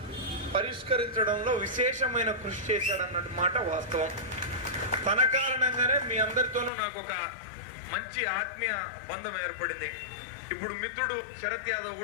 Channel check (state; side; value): drops out; right; at 6.7 s